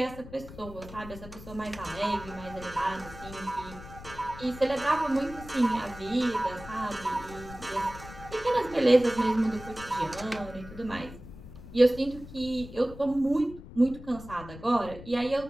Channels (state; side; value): noise; left; rumble, 15 dB below the sound